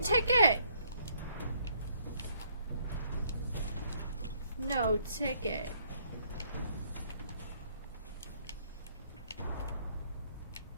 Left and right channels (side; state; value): both; inverted; correlation -0.67